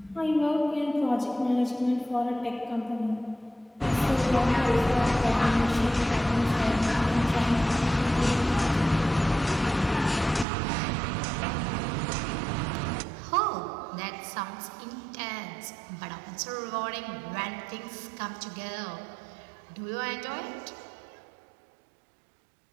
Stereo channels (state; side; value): drops out; left; at 10.5 s